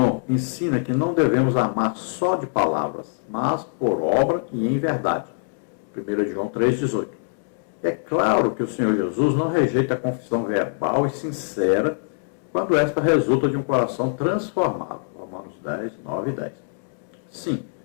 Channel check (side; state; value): right; silent; digital silence